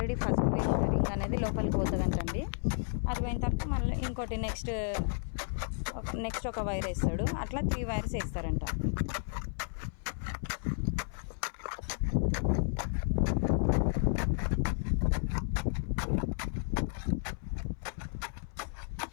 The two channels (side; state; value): right; silent; 56 dB below the other